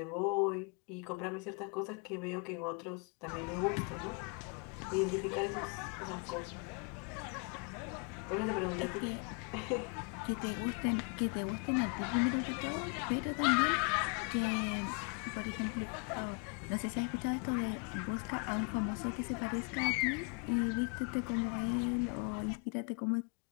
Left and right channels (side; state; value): right; quieter; 36.5 dB